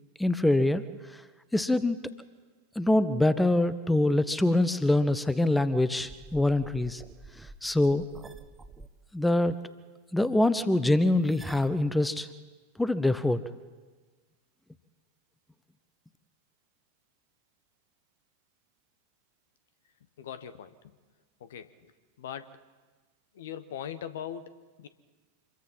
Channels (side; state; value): both; normal; correlation 0.92